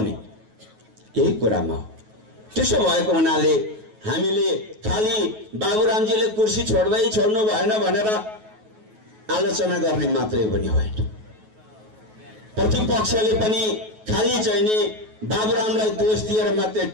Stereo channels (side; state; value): left; late; 9.3 ms